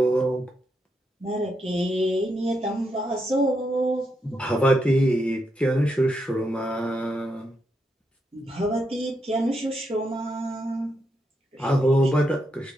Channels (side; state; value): both; normal; correlation 0.82